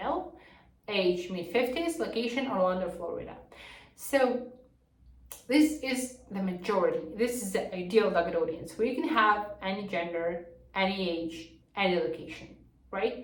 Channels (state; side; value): identical; both; correlation 1.00